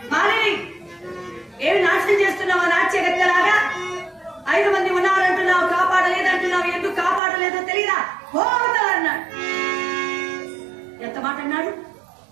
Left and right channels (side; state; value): left; drops out; at 7.2 s